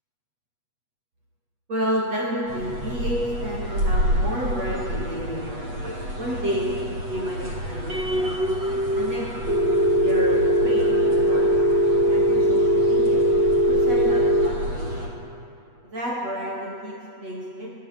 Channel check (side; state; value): left; late; 8.2 ms